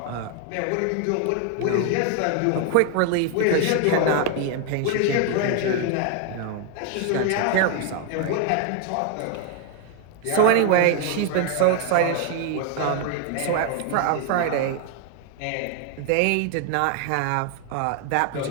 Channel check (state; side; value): different; both; correlation 0.01